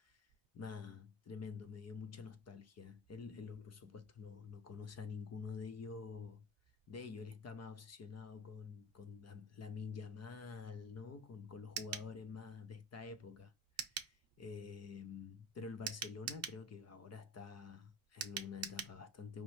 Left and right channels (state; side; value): normal; both; correlation 0.37